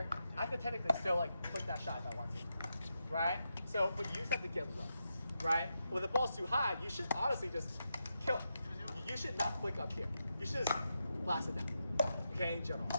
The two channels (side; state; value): both; inverted; correlation -0.86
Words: I could technically still like flick that shot if I want to. Right? So, but you just have to get low. Right? When the ball's too high, you should honestly just kill it. You should not flick up here. You should just blast it down. Okay, in general.